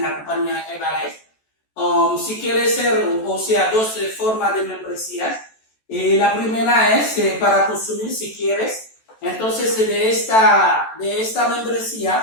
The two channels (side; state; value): right; late; 14 ms